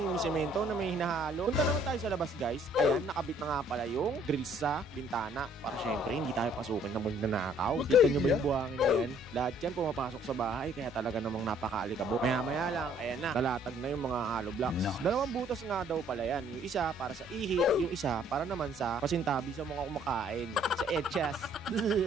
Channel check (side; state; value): both; normal; correlation 0.61